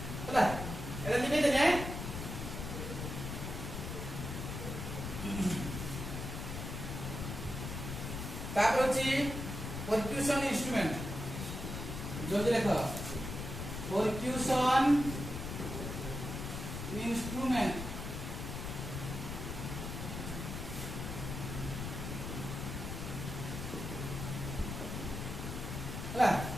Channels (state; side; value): noise; left; rumble, 5 dB below the sound